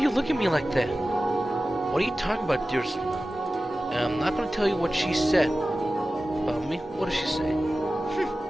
looking at me like that? What are you talking about, dearest? I'm not gonna tell you what she said. About me? What did she say?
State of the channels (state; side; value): normal; both; correlation 0.95